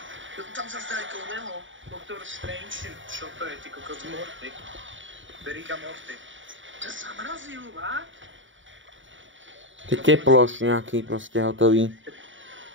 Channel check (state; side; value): late; left; 0.56 ms